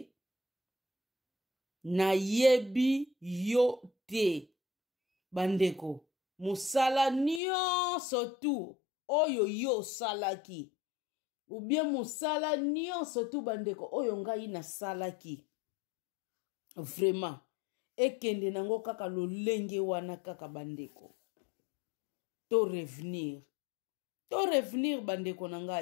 na yebi yo te. Bandeko, musala nyonso tu oyo yo salaki. Ou bien musala nyonso tu bandeko oyo ngai na salaki. Vraiment. Ekende nango kaka lolenge wana kaka bandeko. To revenir bandeko na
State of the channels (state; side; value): drops out; right; at 7.4 s